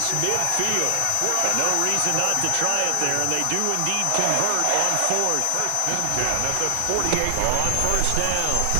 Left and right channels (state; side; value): different; both; correlation 0.00